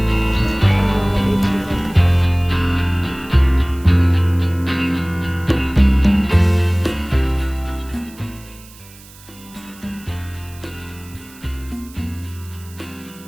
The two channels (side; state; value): right; noise; hiss, 22 dB below the sound